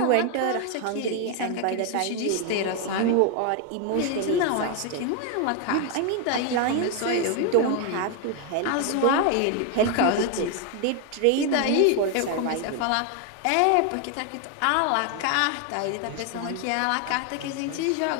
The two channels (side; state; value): both; different; correlation 0.01